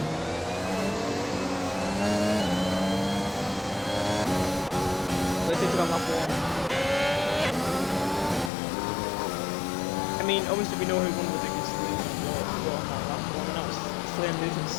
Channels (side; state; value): right; drops out; at 8.5 s